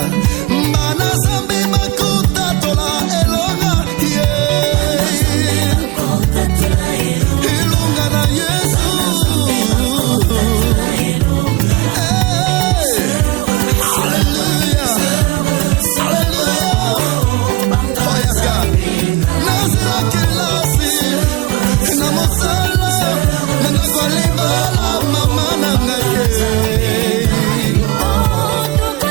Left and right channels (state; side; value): quieter; left; 22.5 dB